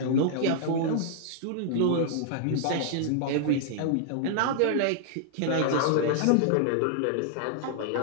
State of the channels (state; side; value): different; both; correlation -0.01